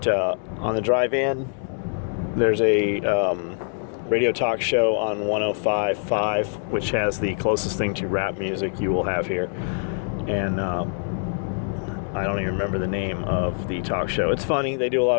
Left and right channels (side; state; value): right; silent; 62 dB below the other